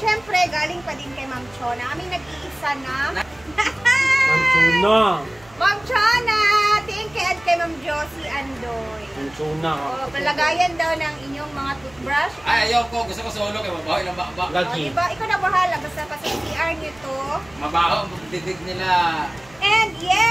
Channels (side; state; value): right; noise; hum, 26 dB below the sound